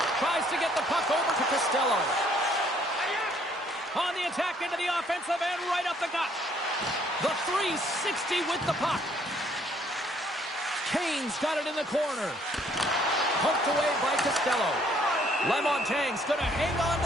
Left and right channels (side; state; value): both; normal; correlation 0.64